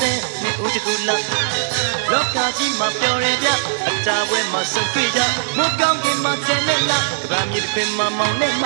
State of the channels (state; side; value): silent; left; 62 dB below the other